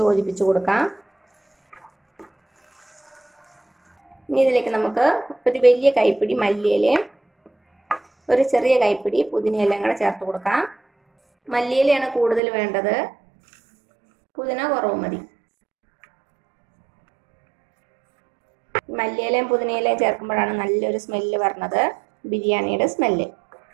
യോജിപ്പിച്ച് കൊടുക്കാം. ഇനി ഇതിലേക്ക് നമുക്ക് ഒരു വലിയ കൈപ്പിടി മല്ലിയിലയും ഒരു ചെറിയ കൈപ്പിടി പുതിനയിലയും കൂടെ ചേർത്ത് കൊടുക്കാം. മല്ലിയിലയാണ് കൂടുതൽ വേണ്ടത്, പുതിന കുറവ് മതി. മല്ലിയിലയും പുതിനയിലയും ചേർക്കുമ്പോഴാണ് നല്ലൊരു സ്മെല്ല് വരുന്നത്, ബിരിയാണിയുടെ സ്മെല്ല്.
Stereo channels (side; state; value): left; drops out; at 12.4 s